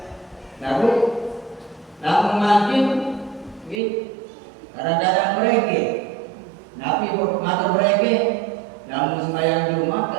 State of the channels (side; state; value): left; drops out; at 3.8 s